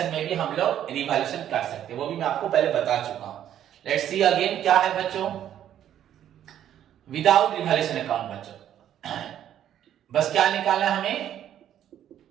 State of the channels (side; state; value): left; quieter; 10.8 dB